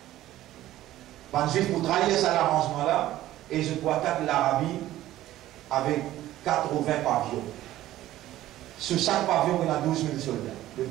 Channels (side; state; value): left; quieter; 14.5 dB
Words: Ban juif pour trahir cet arrangement-là. Et je peux attaquer l'Arabie avec 80 pavillons. Sur chaque pavillon, il y a 12 000 soldats. Le